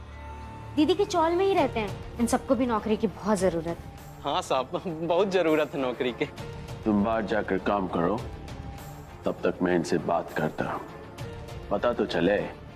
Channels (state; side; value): identical; both; correlation 1.00